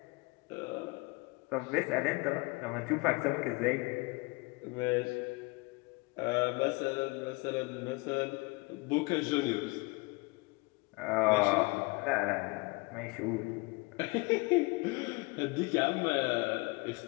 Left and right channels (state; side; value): quieter; right; 26.6 dB